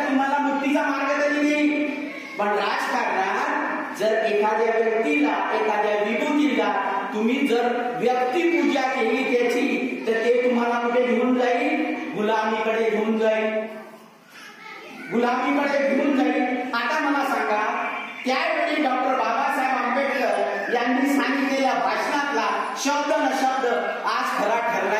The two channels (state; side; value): identical; both; correlation 1.00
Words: तुम्हाला मुक्तीचा मार्ग तरी देईल. पण राजकारणात जर एखाद्या व्यक्तीला, एखाद्या विभूतीला तुम्ही जर व्यक्तिपूजा केली त्याची तर ते तुम्हाला कुठे घेऊन जाईल? गुलामीकडे घेऊन जाईल. आता मला सांगा, त्यावेळी डॉक्टर बाबासाहेब आंबेडकर यांनी सांगितलेल्या भाषणातला शब्द न शब्द आज खरा